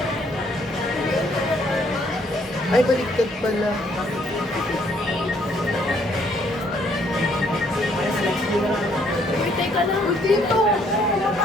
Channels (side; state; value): both; normal; correlation 0.67